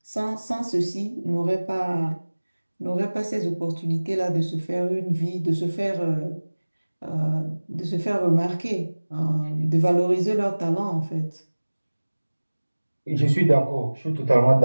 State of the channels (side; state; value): both; inverted; correlation -1.00